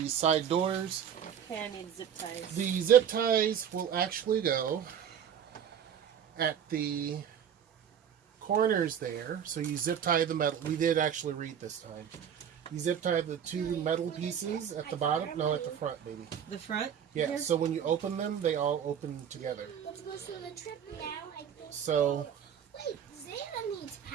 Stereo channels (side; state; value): left; quieter; 8.5 dB